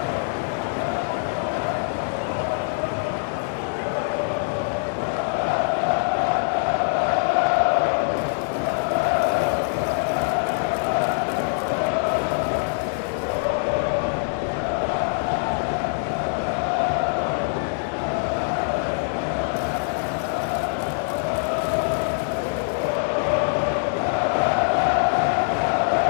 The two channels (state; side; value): silent; right; 63 dB below the other